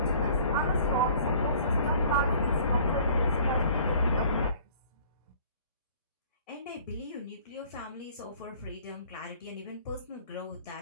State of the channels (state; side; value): inverted; both; correlation -0.51